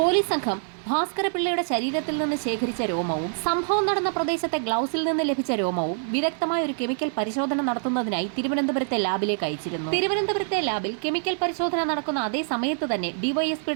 സംഘം ഭാസ്കരപിള്ളയുടെ ശരീരത്തിൽ നിന്ന് ശേഖരിച്ച രോമവും സംഭവം നടന്ന പ്രദേശത്തെ ഗ്ലൗസിൽ നിന്ന് ലഭിച്ച രോമവും വിദഗ്ധമായ ഒരു കെമിക്കൽ പരിശോധന നടത്തുന്നതിനായി തിരുവനന്തപുരത്തെ ലാബിലേക്ക് അയച്ചിരുന്നു. തിരുവനന്തപുരത്തെ ലാബിൽ കെമിക്കൽ പരിശോധന നടക്കുന്ന അതേ സമയത്ത് തന്നെ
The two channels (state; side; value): silent; left; 61 dB below the other